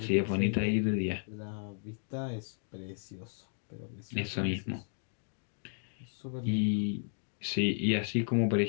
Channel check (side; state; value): right; silent; digital silence